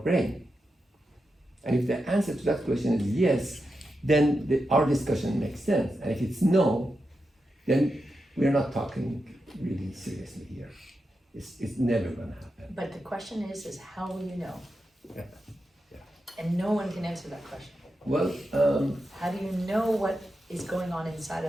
And if the answer to that question is yes, then our discussion makes sense. And if it's no, then we're not talking really seriously here. It's never going to happen. But the question is how will you know? Yeah. And no one can answer that question. Well, How do you know what is going on inside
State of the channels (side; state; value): both; normal; correlation 0.88